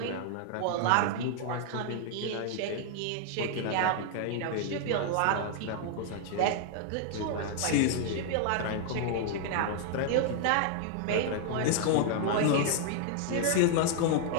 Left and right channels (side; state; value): both; different; correlation 0.00